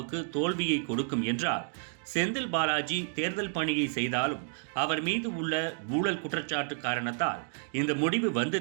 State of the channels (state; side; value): silent; left; digital silence